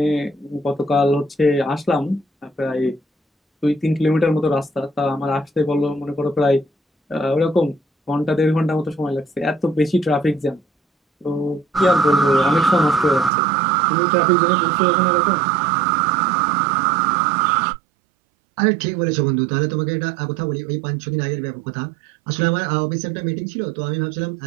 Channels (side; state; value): left; drops out; at 13.3 s